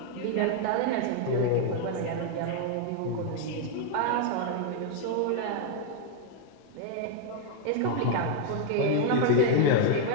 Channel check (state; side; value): different; both; correlation 0.00